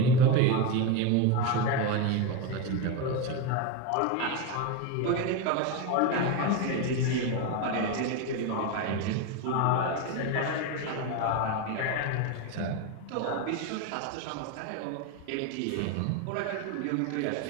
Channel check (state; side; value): different; both; correlation 0.04